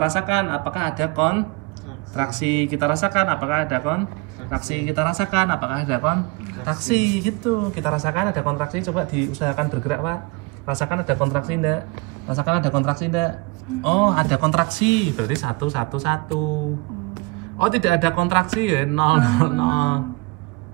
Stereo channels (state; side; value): quieter; left; 26.2 dB